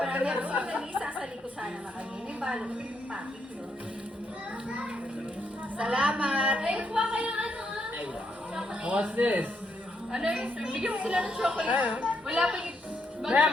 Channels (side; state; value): both; normal; correlation 0.77